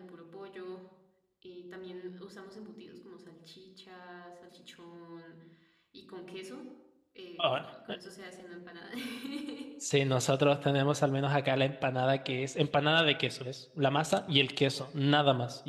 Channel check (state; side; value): identical; both; correlation 1.00